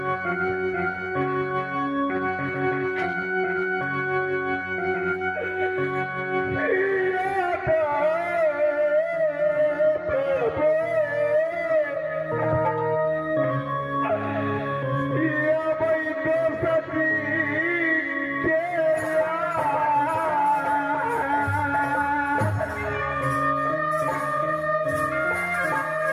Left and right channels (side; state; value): both; identical; correlation 1.00